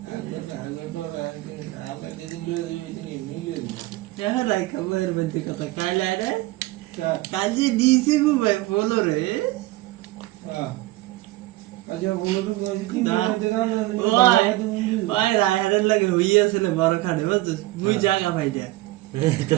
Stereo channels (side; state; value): left; quieter; 18.3 dB